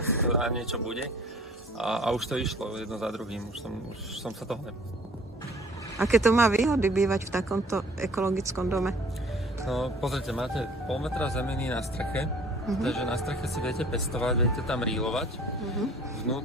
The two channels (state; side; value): normal; both; correlation 0.51